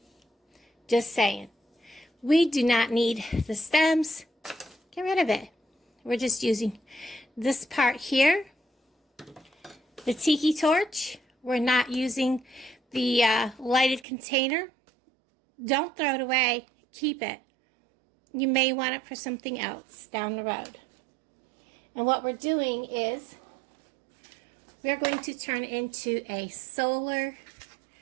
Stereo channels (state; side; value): drops out; left; at 14.1 s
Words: Just saying. We do not need the stems. Get rid of it. We're just using this part here. The tiki torch. We're not using the lighted container. Don't throw it away. Keep it. You may want it for something else down the road. And what we're doing is we're going to turn it into a solar